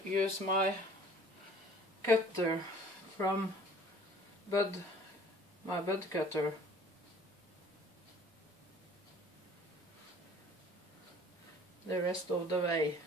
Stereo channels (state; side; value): normal; both; correlation 0.51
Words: use my cutter from my bud cutter. The rest of the way.